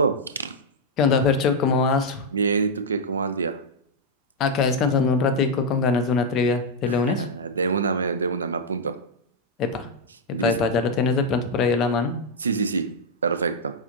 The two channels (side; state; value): both; normal; correlation -0.01